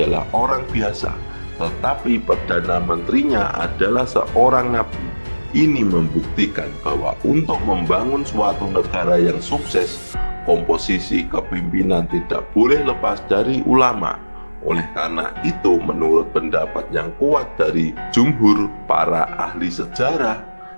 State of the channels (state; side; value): inverted; both; correlation -1.00